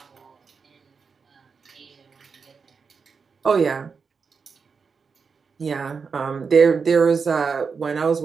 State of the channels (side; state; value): left; quieter; 5.4 dB